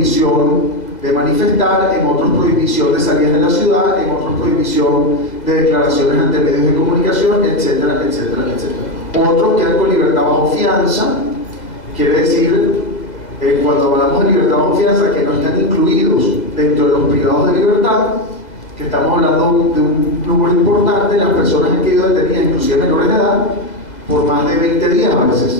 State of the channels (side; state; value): right; late; 2.0 ms